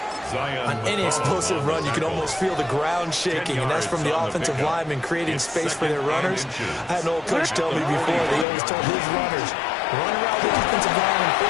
On any explosive run, you can almost feel the ground shaking, and that's from the offensive linemen creating space for their runners. I had an old coach tell me before, they always told his runners, run around the offensive line in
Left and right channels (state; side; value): drops out; right; at 8.5 s